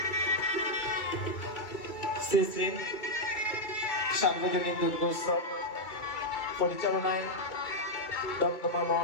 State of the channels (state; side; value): late; right; 2.3 ms